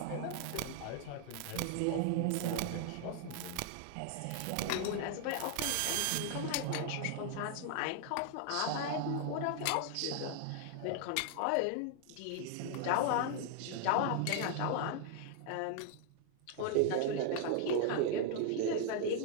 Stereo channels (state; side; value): different; both; correlation 0.00